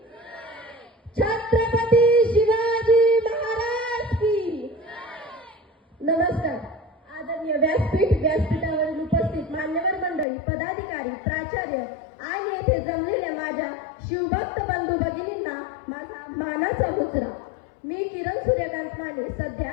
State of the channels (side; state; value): right; drops out; at 10.2 s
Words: छत्रपती शिवाजी महाराज की। नमस्कार। आदरणीय व्यासपीठावरील उपस्थित मान्यवर मंडळी, पदाधिकारी, प्राचार्य आणि येथे जमलेल्या माझ्या शिवभक्त बंधू भगिनींना माझा मानाचा मुजरा। मी किरण सूर्यकांत माने, सध्या